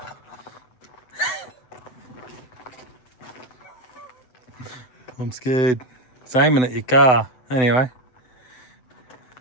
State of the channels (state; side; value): late; right; 7.9 ms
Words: I'm scared. It's aiming at your car. Anyway.